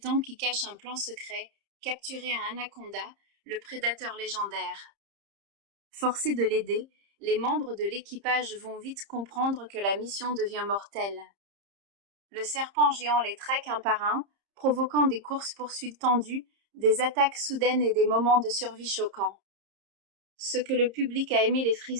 qui cache un plan secret, capturer un anaconda, le prédateur légendaire. Forcés de l'aider, les membres de l'équipage vont vite comprendre que la mission devient mortelle. Le serpent géant les traque un par un, provoquant des courses-poursuites tendues, des attaques soudaines et des moments de survie choquants. Ce que le public a aimé, les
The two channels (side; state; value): left; late; 30 ms